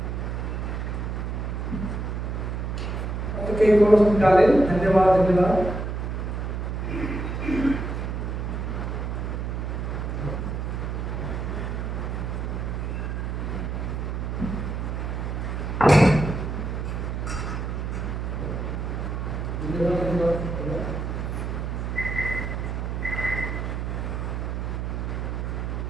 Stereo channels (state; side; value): noise; right; hum, 3 dB below the sound